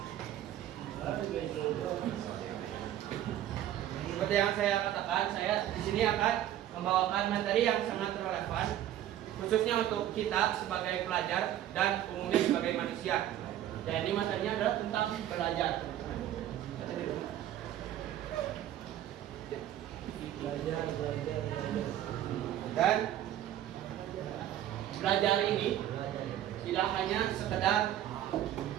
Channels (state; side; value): quieter; left; 12.1 dB